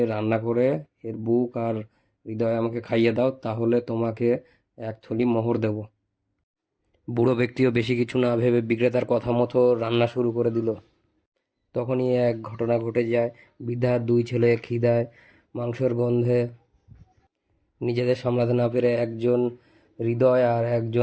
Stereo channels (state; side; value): identical; both; correlation 1.00